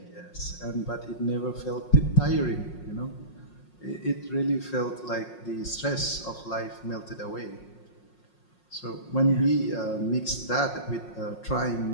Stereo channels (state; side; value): late; right; 5.5 ms